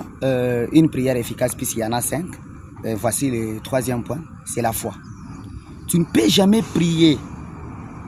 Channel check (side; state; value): both; identical; correlation 1.00